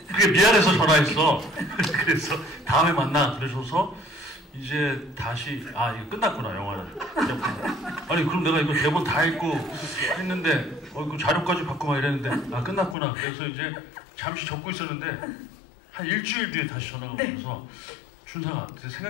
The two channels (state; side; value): drops out; right; at 13.0 s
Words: 그게 미안해서 전화했어. 그래서 다음에 만나 그러셔서 이제 다시 이거 끝났구나 영화는. 아니 그럼 내가 이거 대본 다 읽고 했는데 그 자료까지 받고 막 이랬는데 끝났구나. 그래서 이제 잠시 적고 있었는데 한 일주일 뒤에 다시 전화가 오셔서 준상아